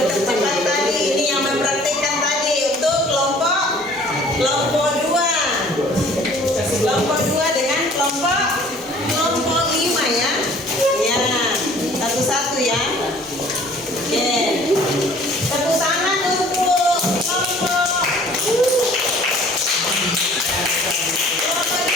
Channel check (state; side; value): normal; both; correlation 0.52